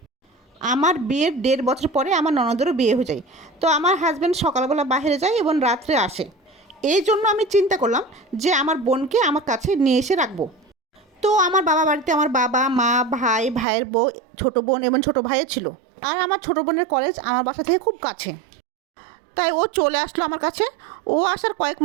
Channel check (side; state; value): left; drops out; at 13.7 s